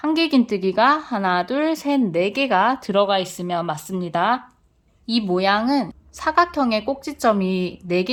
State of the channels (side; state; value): both; identical; correlation 1.00